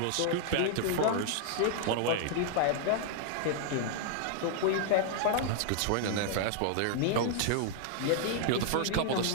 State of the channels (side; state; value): both; different; correlation -0.01